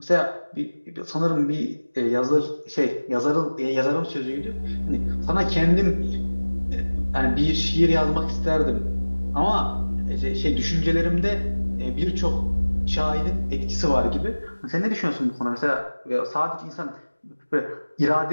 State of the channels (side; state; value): both; inverted; correlation -1.00